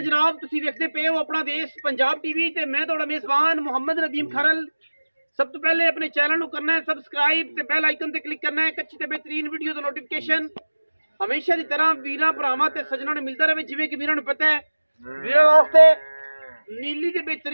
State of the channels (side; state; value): both; inverted; correlation -1.00